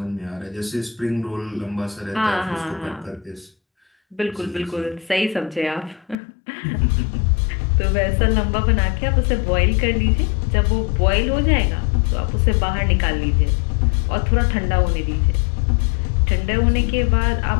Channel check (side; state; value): right; drops out; at 6.2 s